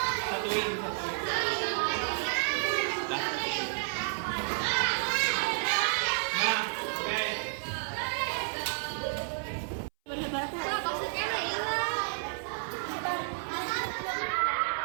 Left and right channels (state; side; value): silent; left; 57 dB below the other